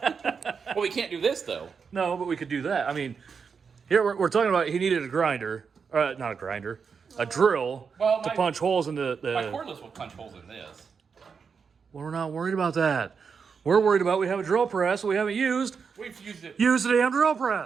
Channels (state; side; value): quieter; left; 5.9 dB